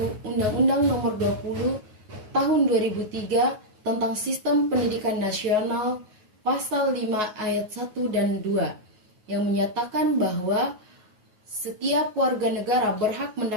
Undang-Undang Nomor 20 Tahun 2003 tentang Sistem Pendidikan Nasional Pasal 5 Ayat 1 dan 2 yang menyatakan bahwa setiap warga negara berhak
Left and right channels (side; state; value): left; late; 9.4 ms